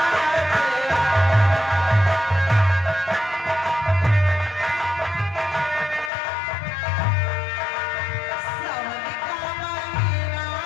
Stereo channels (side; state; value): right; drops out; at 6.1 s